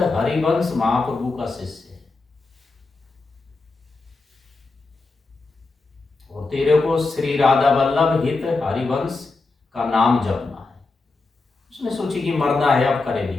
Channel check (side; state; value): right; quieter; 3.7 dB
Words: महाप्रभु का शिष्य है और तेरे को श्री राधा वल्लभ हित हरिवंश का नाम जपना है। उसने सोची कि मरना है, अब